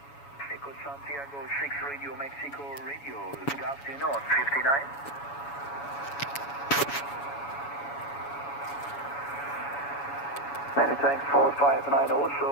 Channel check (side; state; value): right; late; 7.1 ms